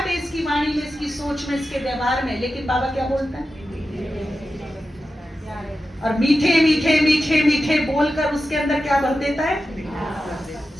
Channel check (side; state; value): both; normal; correlation 0.92